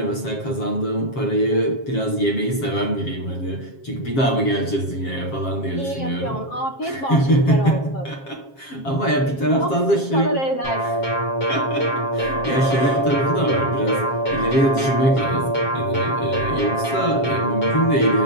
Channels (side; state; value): right; late; 7.4 ms